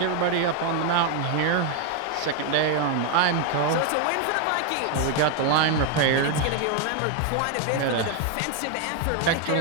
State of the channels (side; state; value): both; different; correlation 0.01